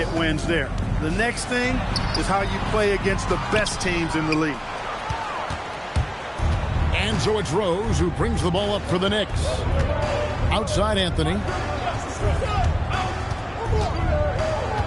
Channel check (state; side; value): identical; both; correlation 1.00